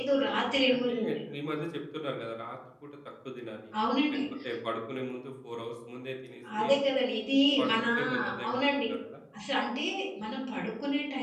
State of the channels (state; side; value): identical; both; correlation 1.00